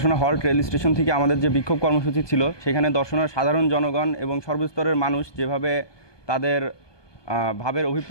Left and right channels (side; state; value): right; late; 1.2 ms